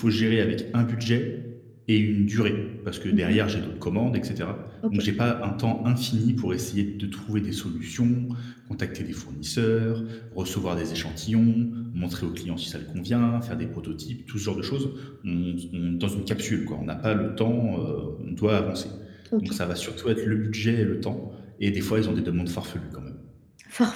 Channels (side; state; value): both; identical; correlation 1.00